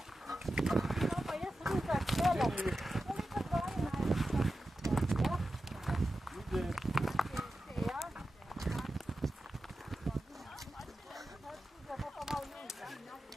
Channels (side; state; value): both; normal; correlation 0.92